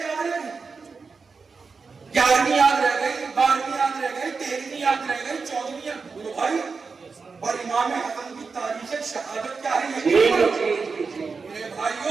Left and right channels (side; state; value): left; quieter; 4.8 dB